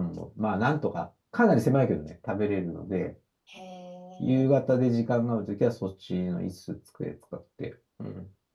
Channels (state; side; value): identical; both; correlation 1.00